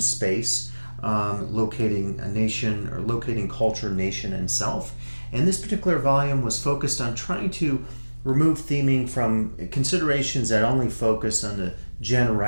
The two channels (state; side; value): inverted; both; correlation -1.00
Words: locating a nation or locating culture, nation, and self. And this particular volume was focused on trying to remove theming from considerations that only focus on the